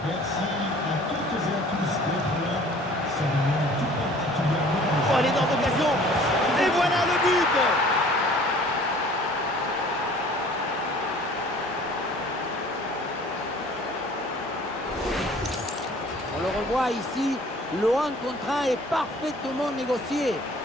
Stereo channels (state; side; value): normal; both; correlation 0.51